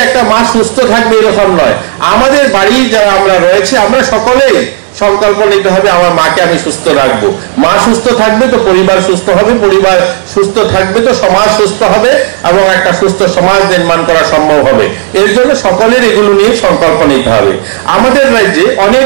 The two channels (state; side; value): silent; left; digital silence